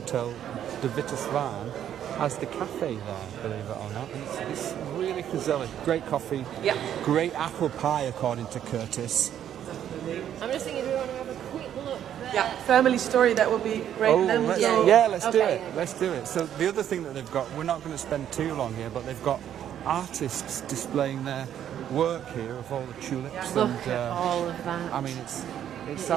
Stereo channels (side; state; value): left; quieter; 10.2 dB